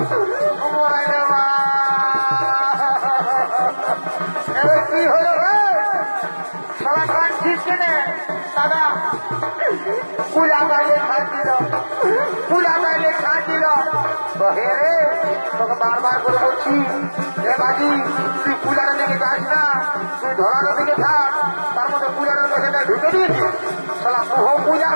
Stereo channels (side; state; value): both; inverted; correlation -1.00